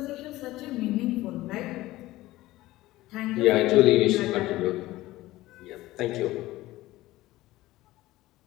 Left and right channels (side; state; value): right; quieter; 17.3 dB